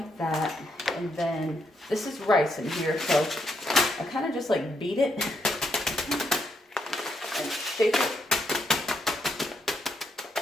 that, and then this is rice in here, so I kind of just like beat it and shake it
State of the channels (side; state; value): both; normal; correlation 0.78